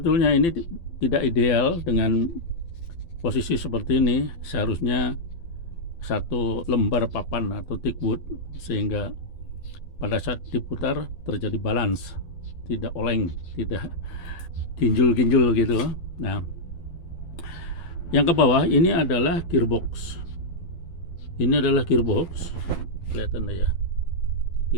ini tidak ideal dengan posisi seperti ini. Seharusnya satu lembar papan atau thick wood, sehingga pada saat diputar terjadi balance, tidak oleng, tidak ginjul-ginjul gitu. Nah, yang ke bawah ini adalah gearbox. Kelihatan ya.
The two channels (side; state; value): right; late; 12 ms